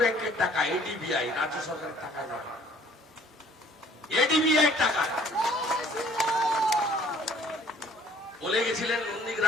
ব্যাংকের টাকা, এডিবিআই, রাজ্য সরকারের টাকা নয়, এডিবিআই টাকা। বলে গেছিলেন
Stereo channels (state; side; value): normal; both; correlation 0.56